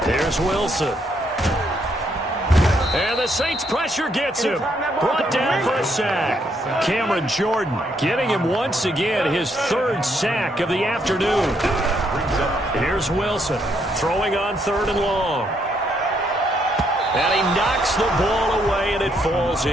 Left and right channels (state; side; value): normal; both; correlation 0.74